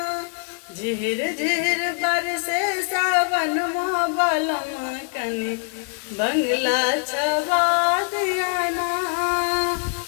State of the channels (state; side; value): silent; right; 57 dB below the other